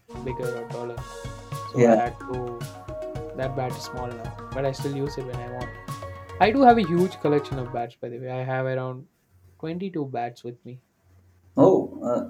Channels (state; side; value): identical; both; correlation 1.00